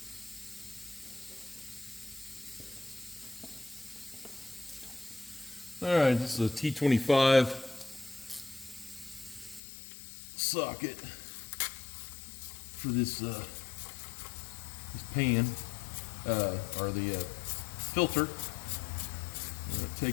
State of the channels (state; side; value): drops out; right; at 9.6 s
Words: All right, this is a T25 socket for this pan, or the filter. I'm going to